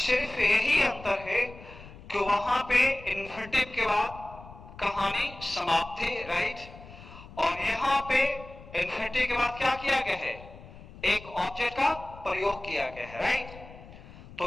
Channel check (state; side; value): noise; left; rumble, 18 dB below the sound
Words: यही अंतर है कि वहां पे इन्फिनिटिव के बाद कहानी समाप्त थी, राइट, और यहां पे इन्फिनिटिव के बाद क्या किया गया है? एक ऑब्जेक्ट का प्रयोग किया गया है, राइट.